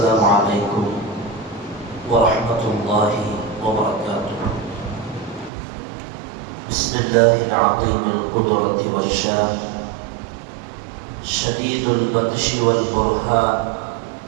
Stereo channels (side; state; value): left; drops out; at 5.5 s